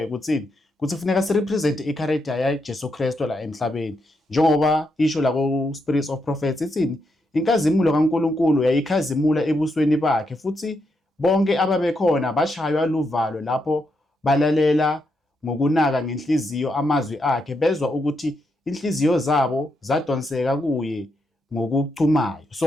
ukuthi kufuneka sirepresent i-character yaJesu Kristu la emhlabeni. Njengoba isho la ku-Spirits of Prophets ithini? Inkazimulo kaNkulunkulu yayikhazimula ebusweni bakhe futhi bonke ababekhona bashaywa luvalo lapho balalela ngokunaka ngenhliziyo amazwi akhe bezwa ukuthi inhliziyo zabo zadonseka kuye ngokuchumayo.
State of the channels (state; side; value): normal; both; correlation 0.81